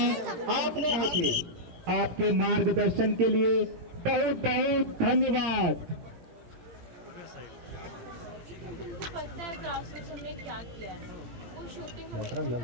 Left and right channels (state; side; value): late; left; 17 ms